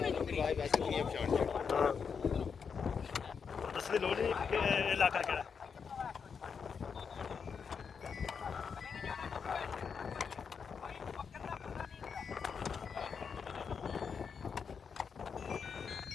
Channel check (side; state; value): right; quieter; 6.2 dB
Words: ਨਹੀਂ ਚੁੱਕਣੀ ਹਾਂ ਦੱਸ ਦੀ ਲੋੜ ਨਹੀਂ ਕਿ ਇਹ ਇਲਾਕਾ ਕਿਹੜਾ